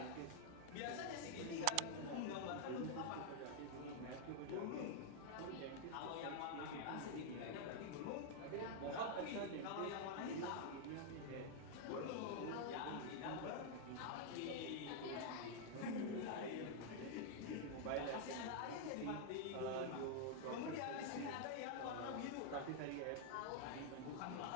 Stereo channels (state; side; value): different; both; correlation 0.00